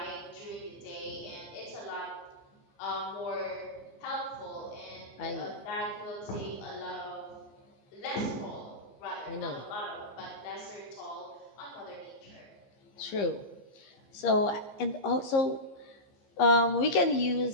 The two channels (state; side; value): late; right; 15 ms